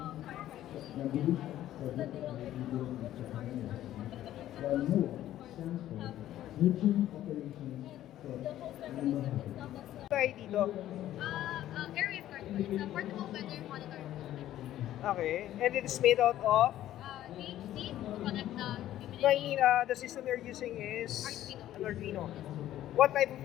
Tayo dito. Area card. It's a portable weather monitor. Okay. And it is made out of? PhD to connect the No, I mean, the system you're using is an Arduino. What type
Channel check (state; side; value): quieter; right; 13.0 dB